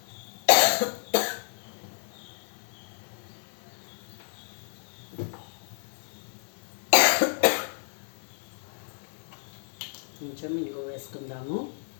కొంచెం ఇంగు వేసుకుందాము.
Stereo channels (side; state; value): right; silent; digital silence